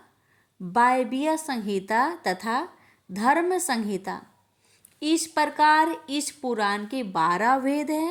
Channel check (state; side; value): identical; both; correlation 1.00